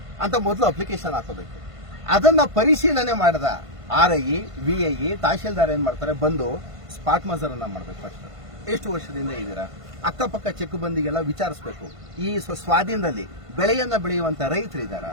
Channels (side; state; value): left; late; 1.5 ms